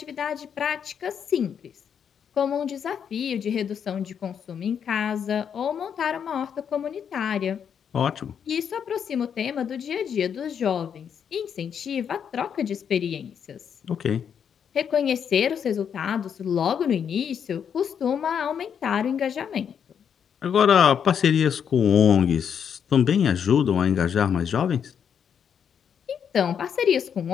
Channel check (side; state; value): right; quieter; 7.8 dB